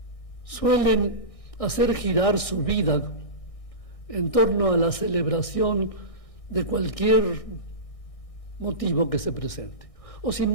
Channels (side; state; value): right; late; 1.6 ms